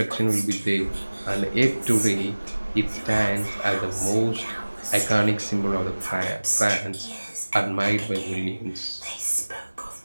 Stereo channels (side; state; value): both; inverted; correlation -1.00